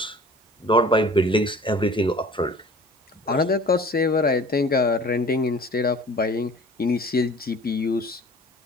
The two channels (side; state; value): both; normal; correlation 0.45